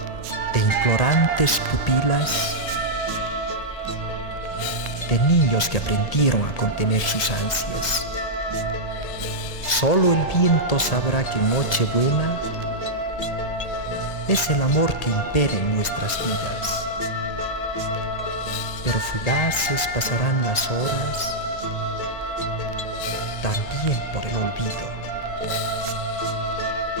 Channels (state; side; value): late; right; 1.8 ms